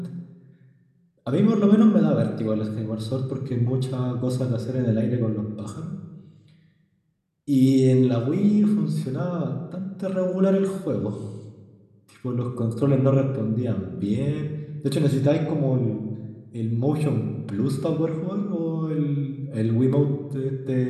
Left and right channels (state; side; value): identical; both; correlation 1.00